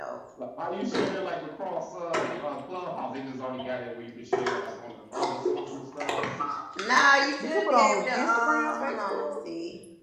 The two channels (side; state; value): both; identical; correlation 1.00